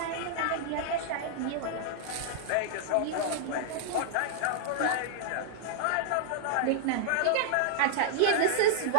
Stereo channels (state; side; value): different; both; correlation -0.01